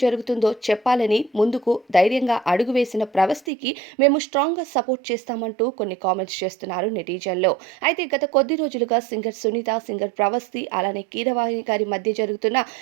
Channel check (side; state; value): left; drops out; at 3.4 s